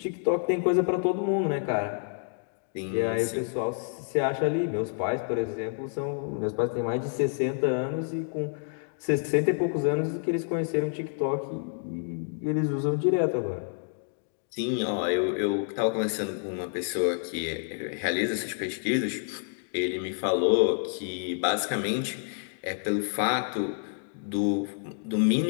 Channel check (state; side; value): silent; right; digital silence